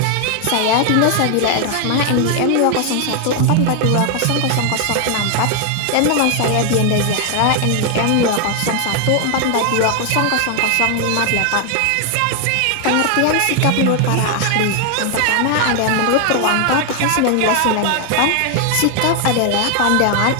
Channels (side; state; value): both; different; correlation 0.00